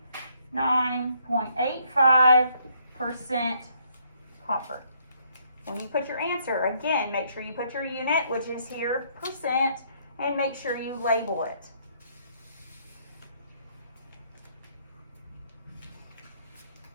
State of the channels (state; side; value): inverted; both; correlation -0.69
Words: copper. When you put your answer, again, make sure you put your unit, which is here, percent, and make sure you label it.